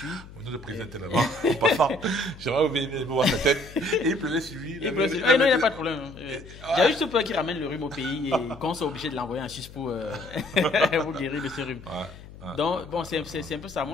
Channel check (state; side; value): noise; left; hum, 17 dB below the sound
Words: On nous le présentait là-bas, en passant. J'aimerais oublier voir sa tête. Et il pleuvait sur lui. Non, il n'y a pas de problème. Il y a juste peur qu'il ramène le rhume au pays et qu'on soit obligé de l'envoyer en Suisse pour guérir de ce rhume. Donc, bon, c'est un peu ça.